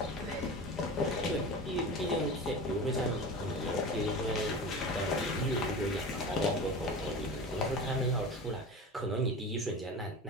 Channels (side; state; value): both; normal; correlation 0.32